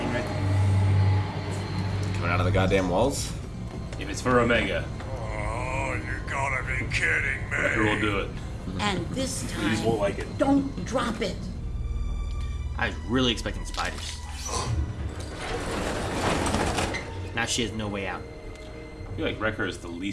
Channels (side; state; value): both; identical; correlation 1.00